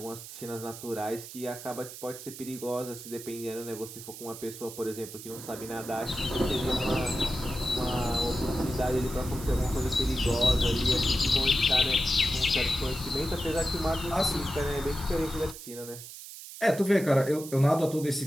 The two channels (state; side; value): noise; right; hiss, 13 dB below the sound